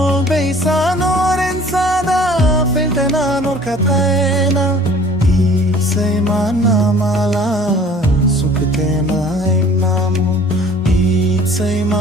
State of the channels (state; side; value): normal; both; correlation 0.51